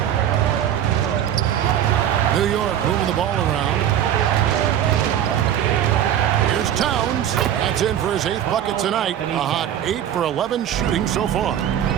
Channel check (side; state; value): left; quieter; 10.4 dB